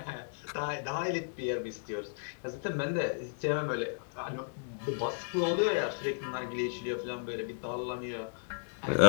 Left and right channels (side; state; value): right; silent; 54 dB below the other